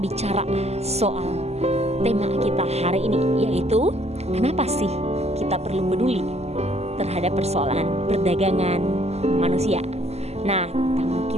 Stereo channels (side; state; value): left; late; 0.30 ms